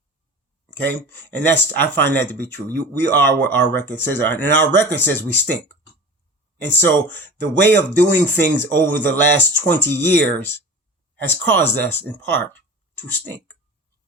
Okay? And I find that to be true. We are what our record says are, and our record says we stink. And so the way of doing things over the last 20 years has caused us in part to stink.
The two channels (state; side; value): normal; both; correlation 0.35